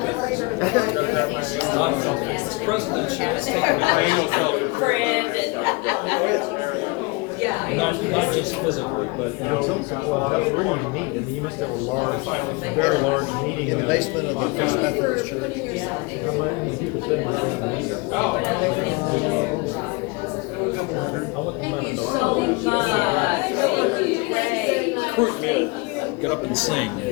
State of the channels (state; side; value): quieter; right; 26.4 dB